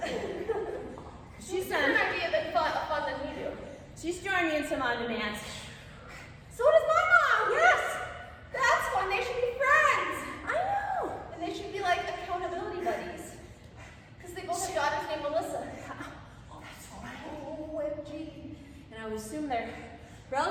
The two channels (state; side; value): identical; both; correlation 1.00